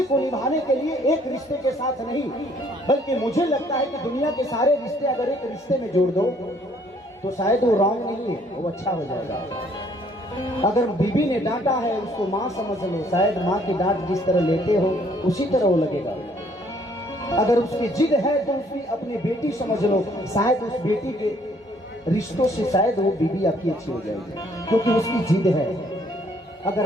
को निभाने के लिए एक रिश्ते के साथ नहीं, बल्कि मुझे लगता है कि दुनिया के सारे रिश्ते अगर एक रिश्ते में जोड़ दो तो शायद वो रॉन्ग नहीं है, वो अच्छा हो जाएगा। अगर बीबी ने डांटा है उसको माँ समझ लो, शायद माँ की डांट जिस तरह लेते हो उसी तरह वो लगेगा। अगर उसकी जिद है तो उसकी अपनी बेटी समझ लो, शायद उस बेटी के रिश्तों से शायद वो बीबी आपकी अच्छी हो जाएगी, क्योंकि उसकी जिद है। अगर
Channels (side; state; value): both; normal; correlation 0.63